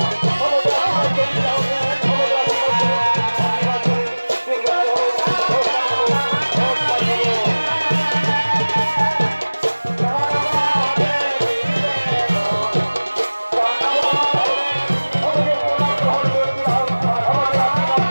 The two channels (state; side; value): inverted; both; correlation -1.00